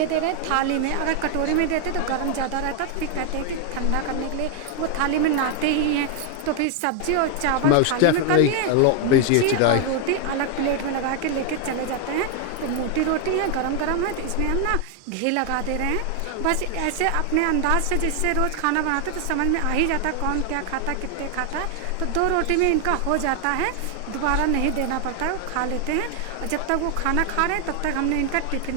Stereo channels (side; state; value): both; different; correlation 0.01